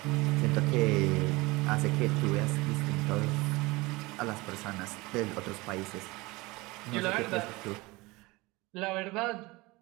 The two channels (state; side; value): quieter; left; 22.7 dB